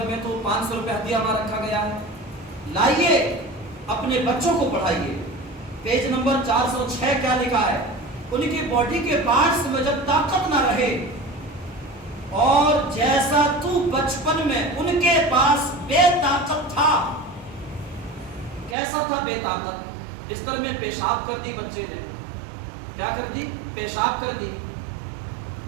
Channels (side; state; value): left; drops out; at 18.8 s